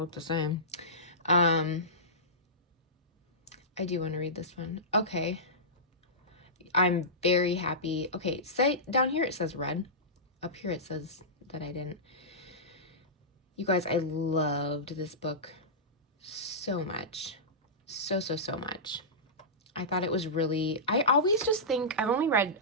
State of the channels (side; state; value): both; normal; correlation -0.17